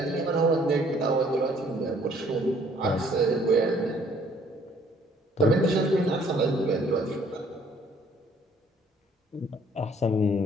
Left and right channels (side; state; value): both; normal; correlation 0.61